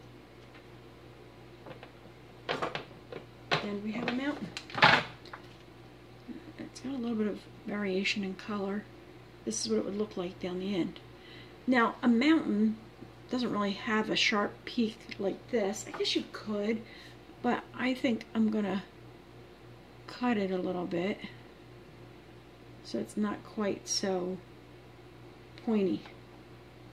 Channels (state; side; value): identical; both; correlation 1.00